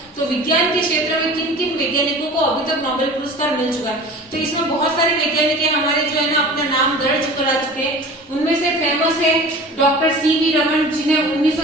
तो विज्ञान के क्षेत्र में किन किन वैज्ञानिकों को अभी तक नोबेल पुरस्कार मिल चुका है, तो इसमें बहुत सारे वैज्ञानिक है हमारे जो है ना अपना नाम दर्ज करा चुके हैं। उनमें से फेमस है डॉक्टर सीवी रमन, जिन्हें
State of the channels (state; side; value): normal; both; correlation 0.40